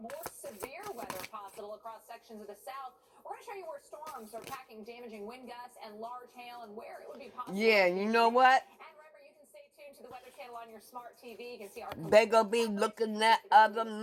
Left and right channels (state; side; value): identical; both; correlation 1.00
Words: more severe weather possible across sections of the south. We're going to show you where storms are packing damaging wind gusts and large hail and where it would be possible. Yeah, you know what? And remember, you can stay tuned to the Weather Channel on your smart TV. You can see our... They gonna be looking at other